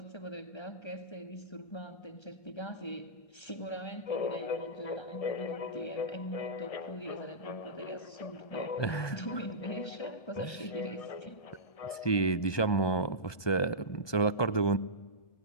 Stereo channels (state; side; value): late; right; 1.2 ms